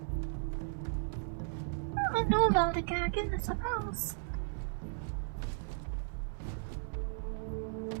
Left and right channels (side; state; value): left; silent; 54 dB below the other